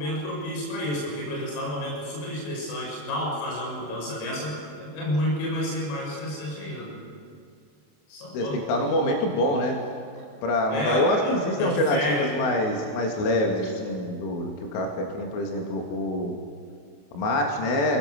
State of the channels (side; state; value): right; late; 27 ms